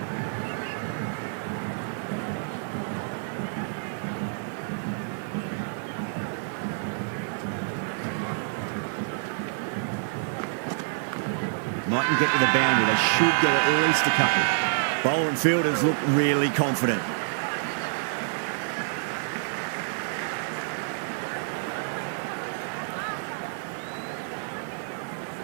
Mightn't get to the boundary. They should get at least a couple. Bowler and fielders look really confident.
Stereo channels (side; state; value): left; silent; digital silence